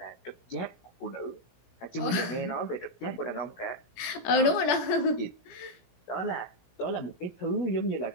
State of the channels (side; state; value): right; late; 17 ms